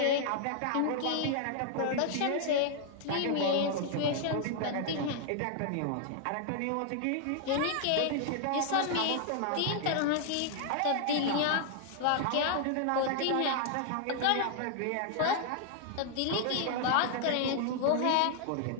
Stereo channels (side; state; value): both; different; correlation 0.00